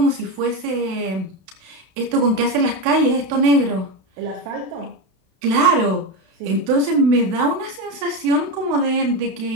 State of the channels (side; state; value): left; late; 32 ms